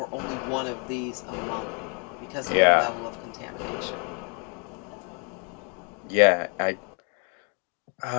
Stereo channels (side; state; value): right; quieter; 38.6 dB